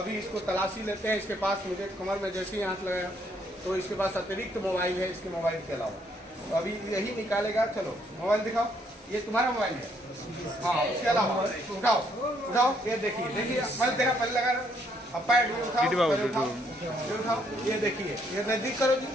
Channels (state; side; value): normal; both; correlation 0.70